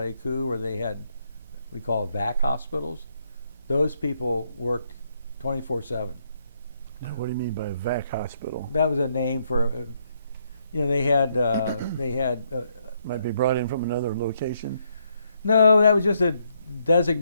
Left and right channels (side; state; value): both; inverted; correlation -0.74